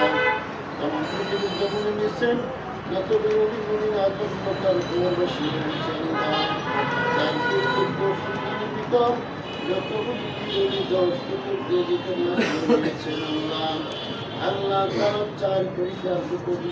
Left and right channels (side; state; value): both; identical; correlation 1.00